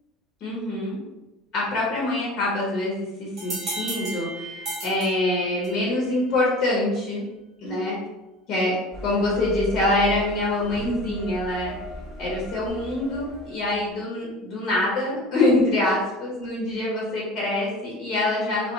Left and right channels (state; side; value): normal; both; correlation 0.39